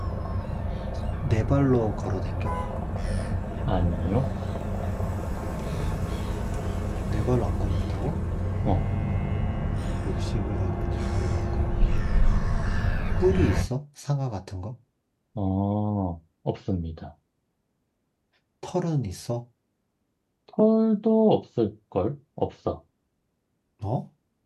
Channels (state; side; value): identical; both; correlation 1.00